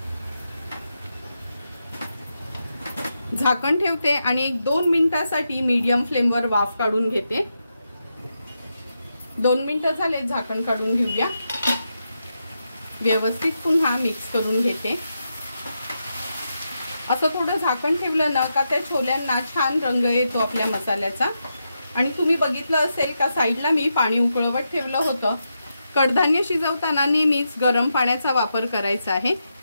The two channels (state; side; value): inverted; both; correlation -0.86